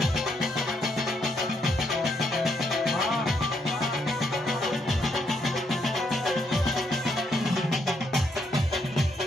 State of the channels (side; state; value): both; normal; correlation 0.75